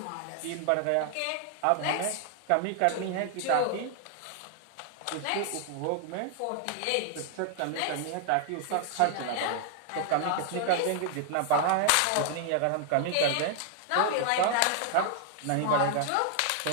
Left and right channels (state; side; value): different; both; correlation 0.00